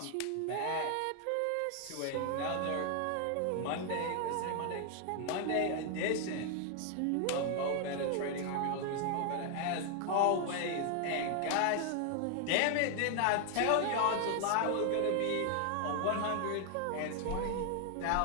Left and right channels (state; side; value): different; both; correlation 0.00